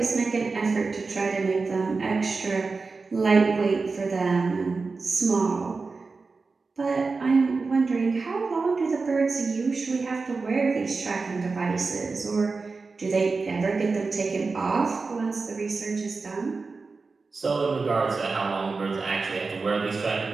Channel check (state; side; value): quieter; left; 4.2 dB